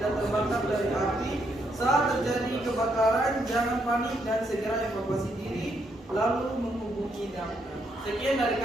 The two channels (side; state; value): both; normal; correlation 0.76